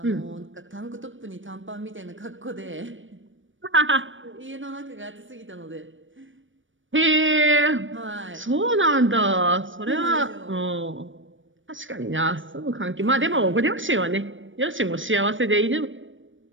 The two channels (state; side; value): late; left; 0.56 ms